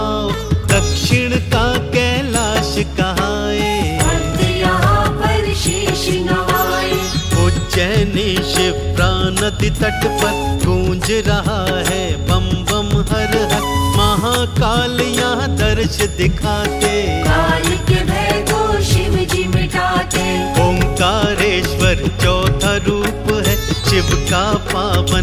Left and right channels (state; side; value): identical; both; correlation 1.00